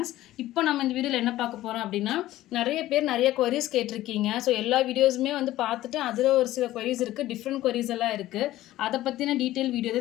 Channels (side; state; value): right; quieter; 15.2 dB